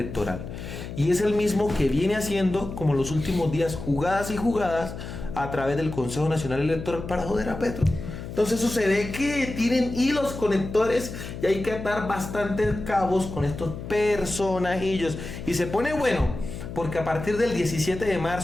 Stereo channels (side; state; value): left; noise; hum, 9 dB below the sound